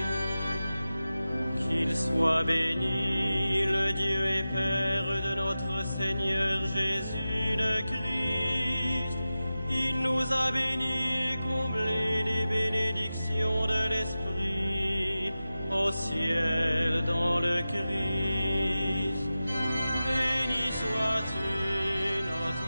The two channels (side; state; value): both; inverted; correlation -0.94